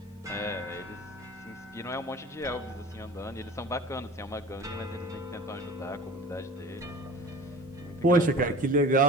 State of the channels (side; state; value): both; normal; correlation 0.39